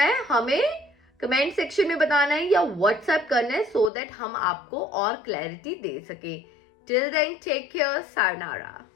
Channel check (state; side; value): drops out; right; at 3.9 s